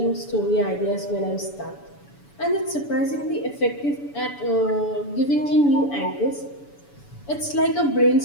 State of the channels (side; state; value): right; late; 7.0 ms